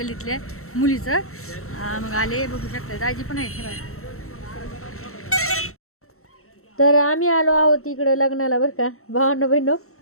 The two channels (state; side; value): late; right; 0.63 ms